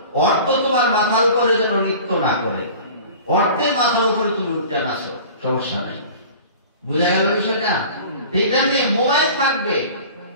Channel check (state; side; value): inverted; both; correlation -0.41